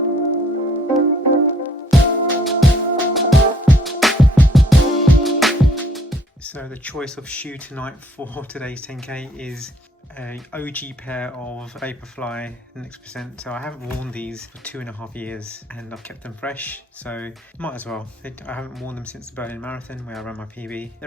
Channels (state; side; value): normal; both; correlation 0.62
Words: So the choice of shoe tonight for today's 10k is an OG pair of Vaporfly Next Percent. So I haven't worn these for 2.5 years and I've kept them fresh, so might as well. I haven't worn them since the Berlin Marathon where I ran my PB.